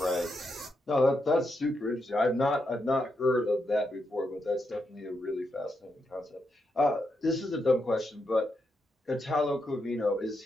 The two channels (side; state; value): both; normal; correlation 0.83